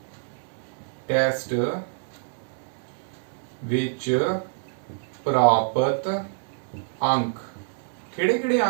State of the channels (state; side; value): silent; left; 61 dB below the other